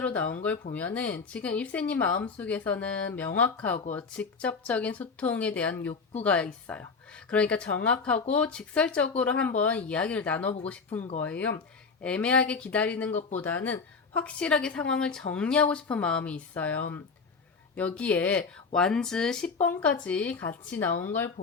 나온 걸 보면은 지금 입새님 마음속에서는 명확하고 직접적인 소통에 대한 욕구가 있어요. 그러니까 정확하고 직설적으로 한번 이야기를 나눠보고 싶은 거예요. 애매하게 기다리는 것보다는 확실하게 상황을 정리하고 싶은 마음이 있어요. 여기에 완즈 10번까지 같이 나온 걸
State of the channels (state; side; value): quieter; right; 4.9 dB